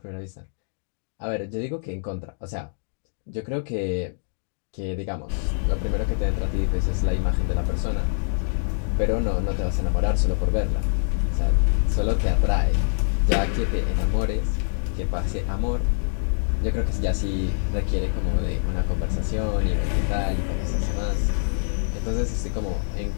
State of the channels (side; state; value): right; silent; digital silence